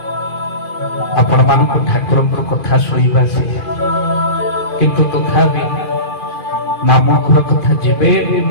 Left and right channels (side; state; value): right; late; 2.4 ms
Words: आपण मान ठाकुर कथा शुणा से किंतु तथापि मामू घर कथा जीवे